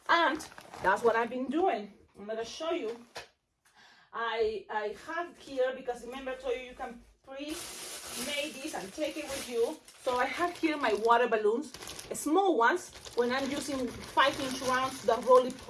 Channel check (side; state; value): both; identical; correlation 1.00